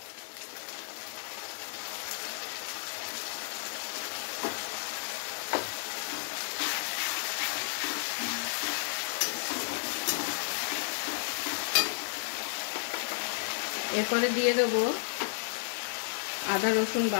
এরপরে দিয়ে দেবো আদা রসুন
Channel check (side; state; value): right; silent; digital silence